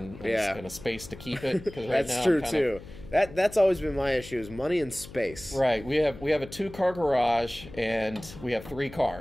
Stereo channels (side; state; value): left; noise; hum, 16 dB below the sound